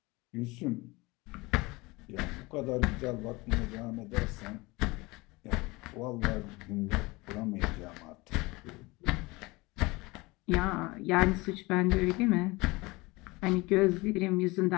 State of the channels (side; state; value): right; quieter; 23.2 dB